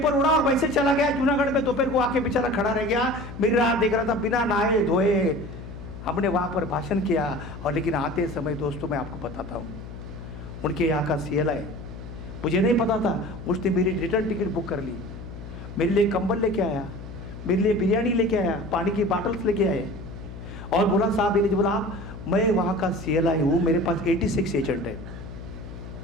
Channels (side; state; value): left; noise; hum, 12 dB below the sound